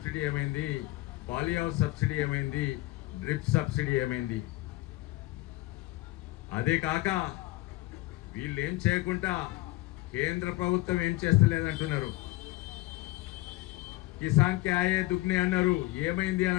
ఏమైంది, పాలీ హౌస్ సబ్సిడీ ఏమైంది, డ్రిప్ సబ్సిడీ ఏమైంది. అదే కాక వీళ్ళు ఏం చేయకుండా కేంద్ర ప్రభుత్వం ఏం చేస్తలేదంటున్నారు. కిసాన్ కే ఆయే దుగ్నే అన్నారు, ఏమైంది అని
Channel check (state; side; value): quieter; right; 18.8 dB